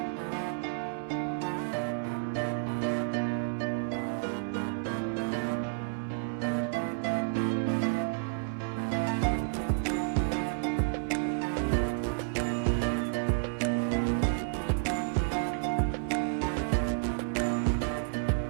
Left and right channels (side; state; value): left; silent; 57 dB below the other